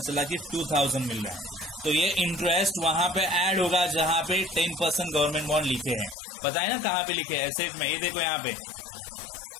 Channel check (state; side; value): drops out; right; at 6.2 s